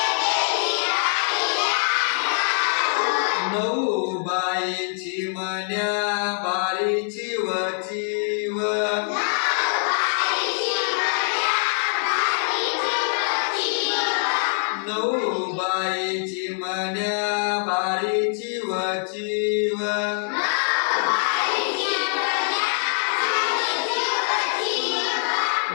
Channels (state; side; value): silent; right; 56 dB below the other